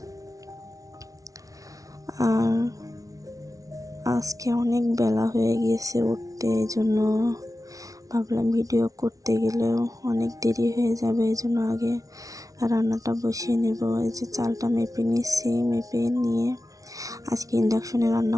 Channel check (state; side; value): late; left; 0.17 ms